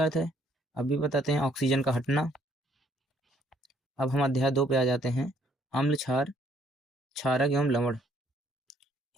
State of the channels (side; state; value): both; normal; correlation 0.65